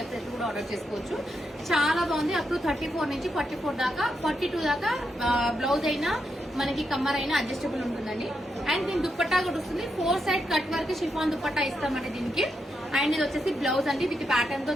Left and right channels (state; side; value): normal; both; correlation 0.83